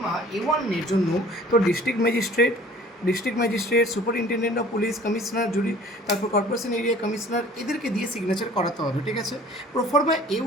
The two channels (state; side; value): normal; both; correlation 0.49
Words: A1 এর জন্য তো district magistrate, superintendent of police, commissioner, jury, তারপর কর্পোরেশন এরিয়া কমিশনার, এদেরকে দিয়ে সিগনেচার করাতে হবে, ঠিক আছে। প্রোফর্মা